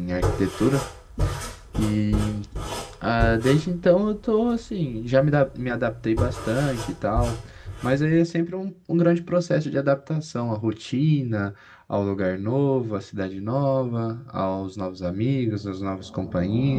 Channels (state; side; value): identical; both; correlation 1.00